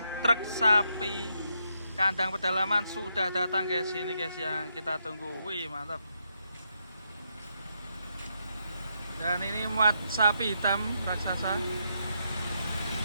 truk sapi kandang pedalaman sudah datang guys. Ini guys yang kita tunggu. Wih mantap. Dan ini muat sapi hitam raksasa.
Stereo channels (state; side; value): inverted; both; correlation -0.79